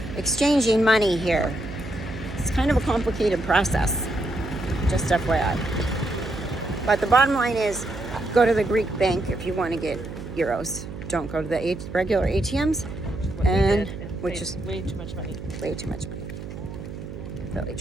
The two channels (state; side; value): noise; right; hum, 10 dB below the sound